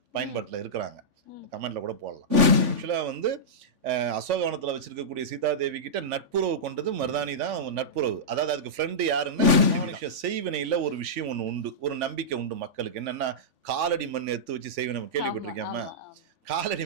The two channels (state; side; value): late; left; 3.5 ms